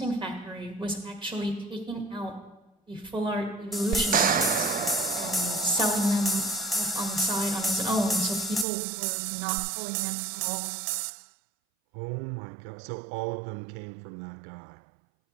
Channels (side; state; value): left; drops out; at 8.7 s